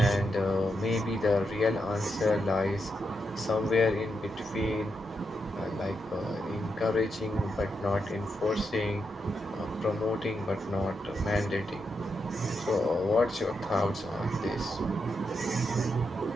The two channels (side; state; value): both; normal; correlation 0.84